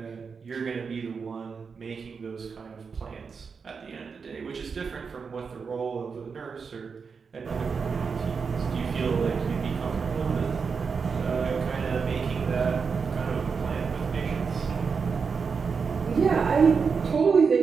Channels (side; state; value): left; quieter; 5.5 dB